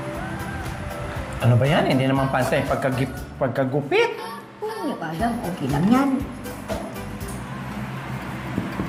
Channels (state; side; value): identical; both; correlation 1.00